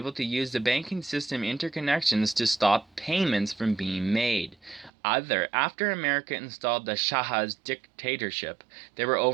to use the banking system interconnections to stop payments from being made. After America installed the Shah's dictatorship, they were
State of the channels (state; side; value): drops out; left; at 4.9 s